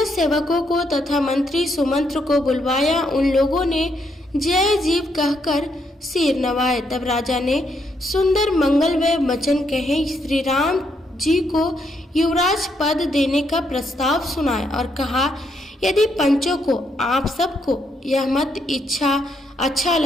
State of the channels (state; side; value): normal; both; correlation 0.76